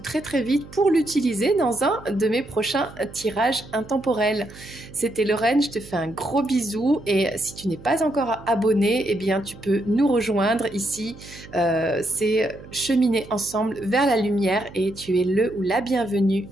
très vite pour l'utiliser dans un de mes prochains tirages intemporels. C'était Lorraine, je te fais un gros bisou. Et si tu n'es pas encore abonné, eh bien, tu peux nous rejoindre ici. C'est cheminer ensemble vers la lumière et tu es le ou la bienvenue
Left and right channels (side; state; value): right; noise; hum, 18 dB below the sound